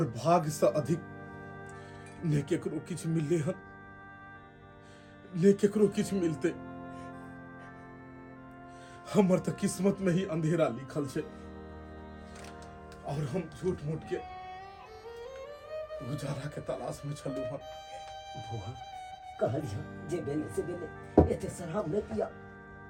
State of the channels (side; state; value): both; identical; correlation 1.00